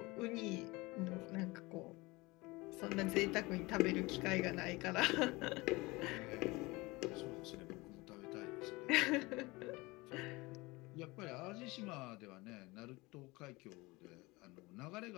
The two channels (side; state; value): right; quieter; 23.0 dB